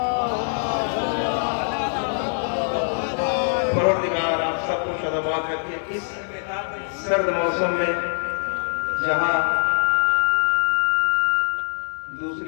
پروردگار آپ سب کو شاداباد رکھے. اس سرد موسم میں جہاں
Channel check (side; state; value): right; silent; digital silence